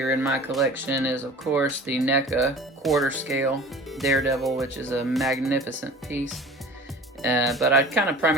in my collection is, of course, the NECA quarter scale Daredevil, which is a magnificent piece. But I kind of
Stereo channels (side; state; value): both; normal; correlation 0.42